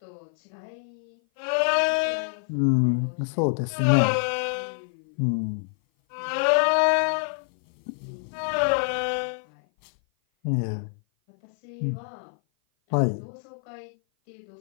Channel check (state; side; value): silent; right; 56 dB below the other